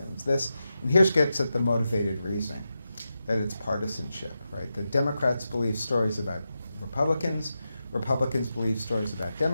And here's gets at the motivated reasoning, that it's partisanship, right? The Democrats believe stories about Republicans, Republicans believe stories about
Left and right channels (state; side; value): inverted; both; correlation -0.89